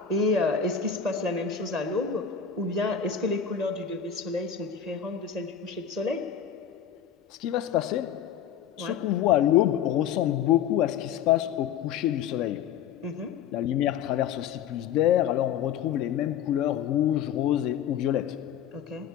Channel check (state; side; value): quieter; right; 8.4 dB